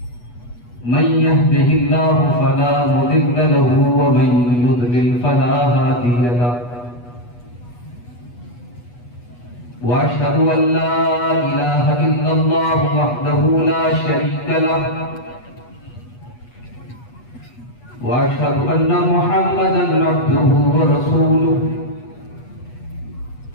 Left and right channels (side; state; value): right; late; 8.2 ms